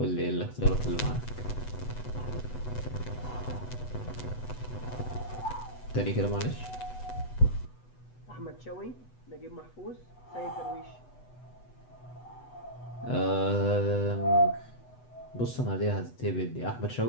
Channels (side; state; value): right; late; 8.1 ms